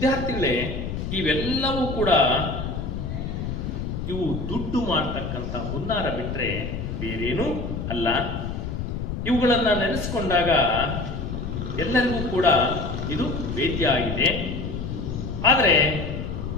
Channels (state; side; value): noise; left; rumble, 4 dB below the sound